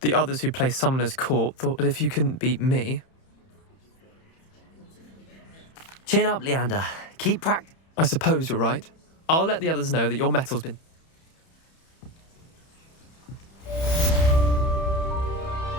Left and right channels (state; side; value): late; right; 31 ms